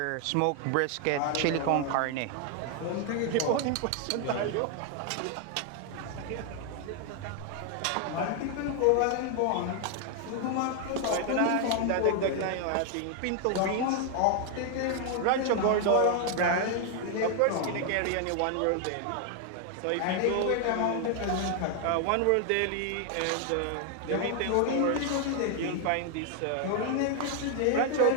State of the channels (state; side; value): different; both; correlation 0.00